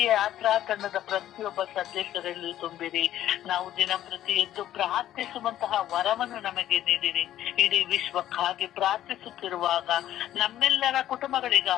ಯಾತ್ರಾ ತಂಡದ ಪ್ರತಿಯೊಬ್ಬ ಸದಸ್ಯರಲ್ಲಿ ತುಂಬಿರಿ. ನಾವು ದಿನಪ್ರತಿ ಎದ್ದು ಪ್ರಾರ್ಥಿಸುವಂತಹ ವರವನ್ನು ನಮಗೆ ನೀಡಿರಿ. ಇಡೀ ವಿಶ್ವಕ್ಕಾಗಿ ಪ್ರಾರ್ಥಿಸುತ್ತಿರುವಾಗ ನಮ್ಮೆಲ್ಲರ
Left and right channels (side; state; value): right; quieter; 12.5 dB